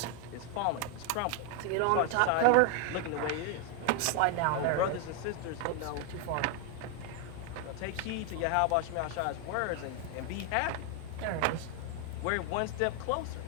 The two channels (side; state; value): both; different; correlation 0.01